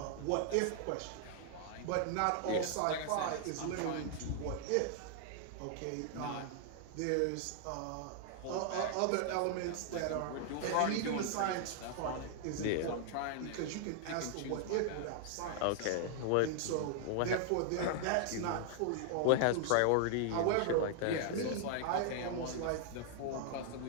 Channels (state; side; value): different; both; correlation 0.00